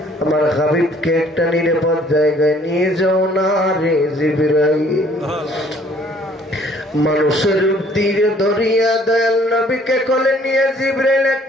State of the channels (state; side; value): normal; both; correlation 0.59